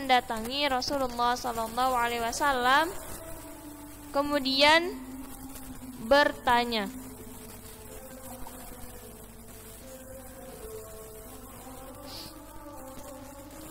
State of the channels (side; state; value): both; identical; correlation 1.00